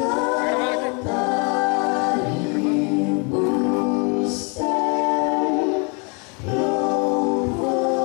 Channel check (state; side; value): quieter; right; 34.1 dB